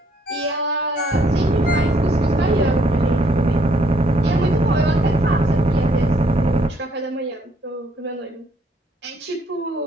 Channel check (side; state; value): both; normal; correlation 0.68